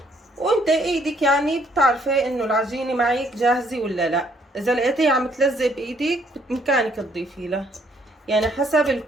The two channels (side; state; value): both; normal; correlation 0.67